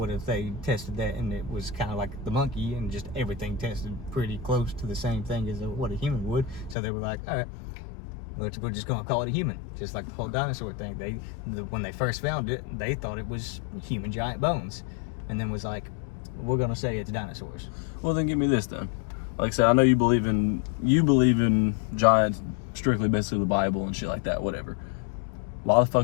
if they tested that and it was kind of like the monkey and just everything tested pretty close to the same thing as what a human would? So they were like, all right, we're just going to call it a human. Just like the whole dinosaur thing. When they first found it, they thought it was human giant bones. And then was like, we're going to say it's dinosaurs. Well, then give me this then. Like I said, I know you believe in giants, strictly basically the Bible and shit like that, whatever. Why the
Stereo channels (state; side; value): drops out; right; at 6.8 s